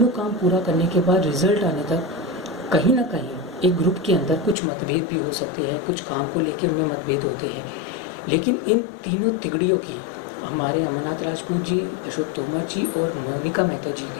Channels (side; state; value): right; drops out; at 4.5 s